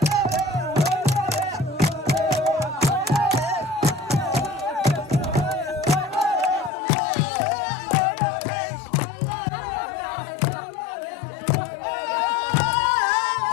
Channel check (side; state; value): right; drops out; at 6.7 s